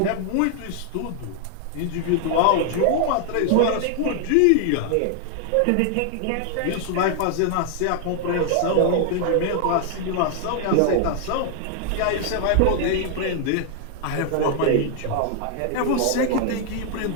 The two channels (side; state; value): both; different; correlation 0.00